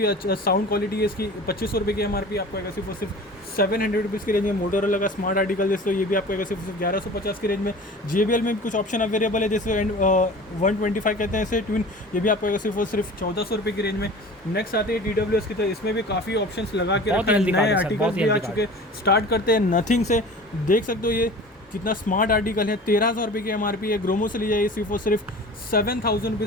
अच्छा साउंड क्वालिटी है इसकी, 2500 रुपये की MRP आपको अगर सिर्फ 700 रुपीज़ की रेंज में। मोटोरोला का स्मार्ट आर्टिकल जैसे तो ये भी आपको सिर्फ 1150 की रेंज में। JBL में कुछ ऑप्शन अवेलेबल है जैसे 125 कहते हैं इसे ट्विन, ये भी आपको सिर्फ 1400 रुपये की रेंज में। नेक्स्ट आते हैं TWS की तरह, इसमें भी काफ़ी ऑप्शंस लगा के रखा है, नए आर्टिकल भी आ चुके। स्टार्ट करते हैं नथिंग से, देख सकते हो ये कितना स्मार्ट आर्टिकल है, 13,000 रुपये की MRP है। ग्रोमो से लिया सिर्फ और सिर्फ 7000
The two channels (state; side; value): normal; both; correlation 0.40